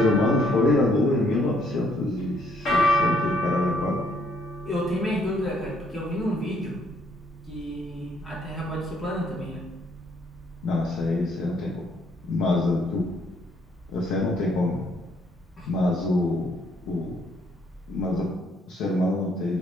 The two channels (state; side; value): normal; both; correlation 0.68